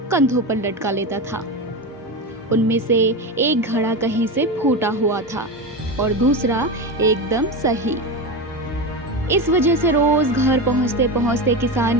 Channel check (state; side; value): normal; both; correlation 0.19